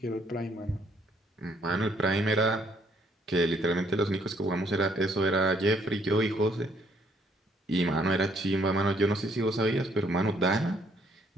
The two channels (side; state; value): both; normal; correlation 0.66